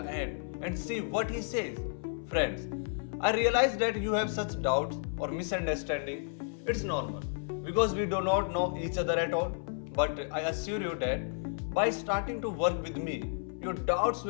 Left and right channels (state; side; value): silent; right; 56 dB below the other